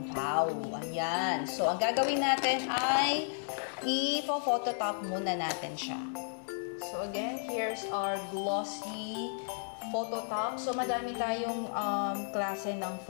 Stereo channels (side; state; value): right; silent; digital silence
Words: Ayan. So, ang gagawin natin ay i-phototop muna natin siya. So, again, here's our glossy phototop. So, madami tayong klase ng